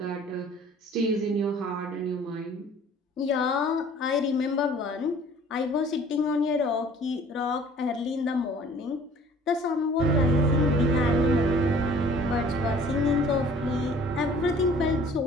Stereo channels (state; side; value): normal; both; correlation 0.51